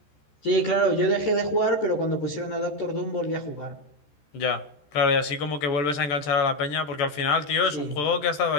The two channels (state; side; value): late; right; 14 ms